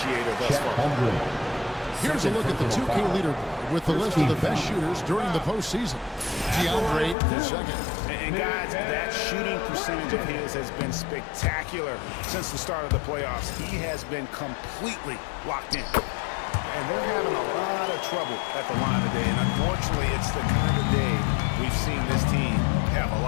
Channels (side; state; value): right; drops out; at 7.2 s